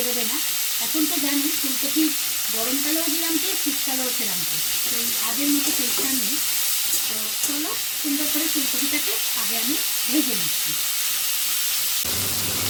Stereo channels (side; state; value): both; identical; correlation 1.00